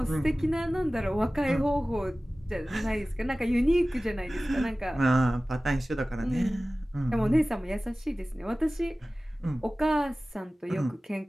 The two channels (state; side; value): normal; both; correlation 0.97